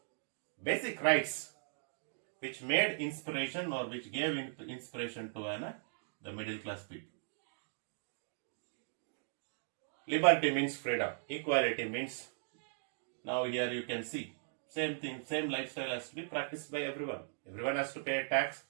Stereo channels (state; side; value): silent; left; digital silence